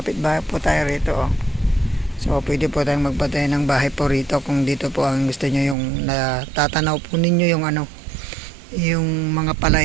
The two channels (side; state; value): left; drops out; at 5.8 s